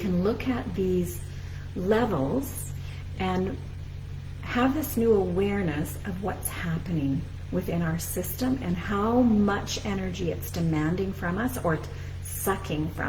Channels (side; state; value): both; identical; correlation 1.00